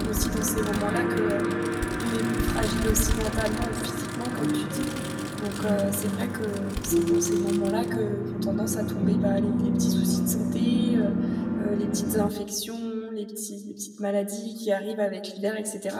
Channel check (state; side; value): identical; both; correlation 1.00